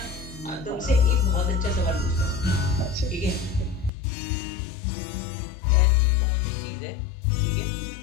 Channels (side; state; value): right; drops out; at 3.9 s